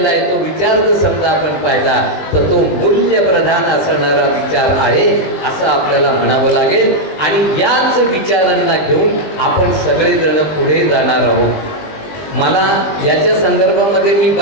आहे तो विचार जर समजा आपण पाहिला तर तो मूल्यप्रधान असणारा विचार आहे असं आपल्याला म्हणावं लागेल. आणि याच विचारांना घेऊन आपण सगळेजण पुढे जाणार आहोत. मला याच्या संदर्भामध्ये मी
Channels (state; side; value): late; right; 20 ms